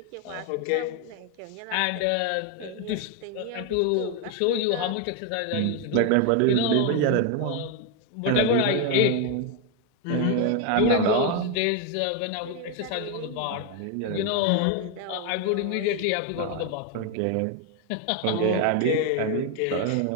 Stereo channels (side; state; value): both; different; correlation 0.01